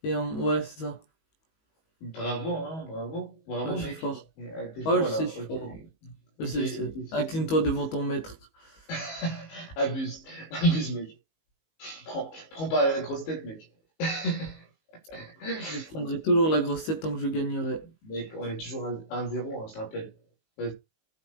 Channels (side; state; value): right; late; 19 ms